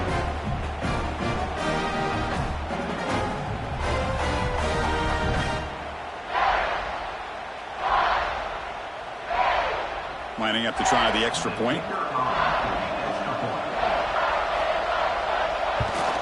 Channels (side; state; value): both; identical; correlation 1.00